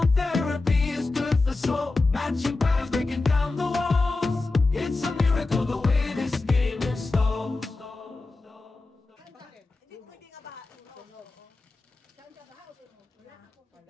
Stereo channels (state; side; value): quieter; right; 3.4 dB